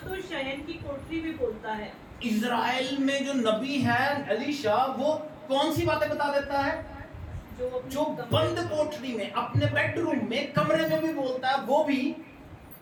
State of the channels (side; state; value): both; identical; correlation 1.00